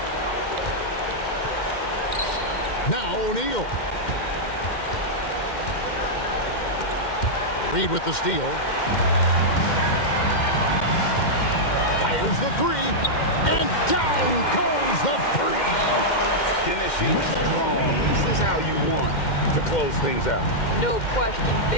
Now O'Neal. Reed with the steal. Fires the 3. And down goes the 3. Finishing strong. This is how you want to close things out. No question.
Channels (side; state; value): right; late; 2.1 ms